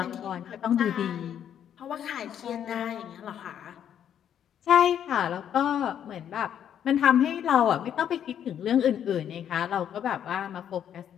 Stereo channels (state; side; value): quieter; right; 9.5 dB